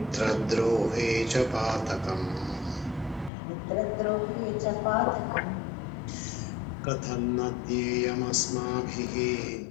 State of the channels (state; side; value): drops out; right; at 3.3 s